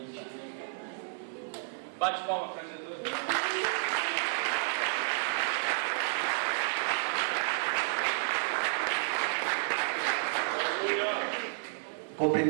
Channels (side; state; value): left; silent; 57 dB below the other